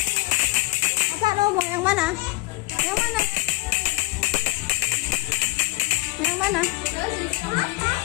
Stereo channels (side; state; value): right; quieter; 21.7 dB